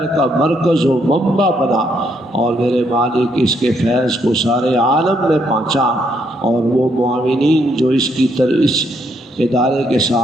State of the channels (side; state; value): both; normal; correlation 0.73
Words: کا مرکز و منبع بنا، اور میرے مالک اس کے فیض کو سارے عالم میں پہنچا، اور وہ معاونین جو اس ادارے کے